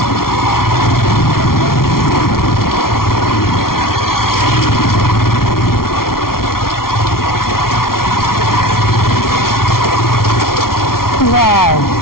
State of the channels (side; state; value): right; late; 0.93 ms